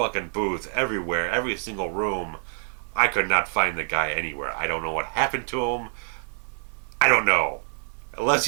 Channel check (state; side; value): silent; left; digital silence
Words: booth, everywhere, every single room. I could not find the guy anywhere. I don't know what happened to him. I don't know. Unless